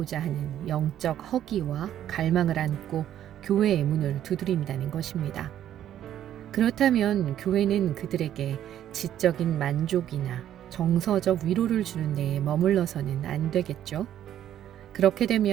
하는 영적 허기와 갈망을 안고 교회의 문을 두드린다는 것입니다. 그렇다면 교회는 그들에게 지적인 만족이나 정서적 위로를 주는 데에 머물러서는 안 되겠죠? 그렇게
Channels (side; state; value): left; quieter; 11.1 dB